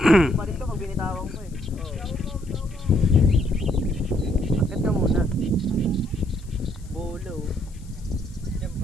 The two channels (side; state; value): left; noise; hiss, 27 dB below the sound